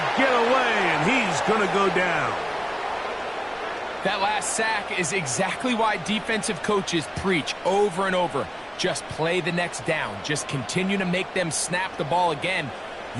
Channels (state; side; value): identical; both; correlation 1.00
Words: get away, and he's going to go down. That last sack is exactly why defensive coaches preach over and over. Just play the next down. Just continue to make them snap the ball again.